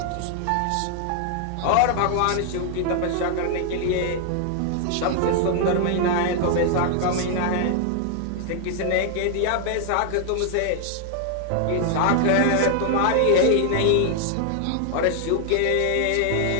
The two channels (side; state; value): both; different; correlation 0.00